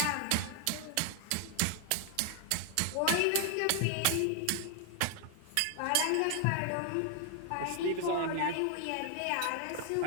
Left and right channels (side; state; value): both; different; correlation 0.00